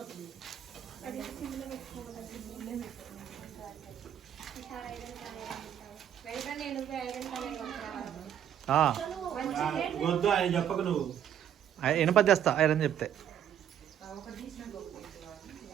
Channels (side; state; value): left; quieter; 9.9 dB